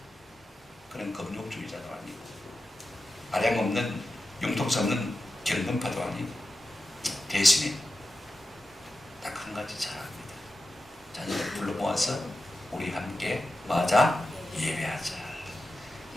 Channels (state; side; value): normal; both; correlation 0.92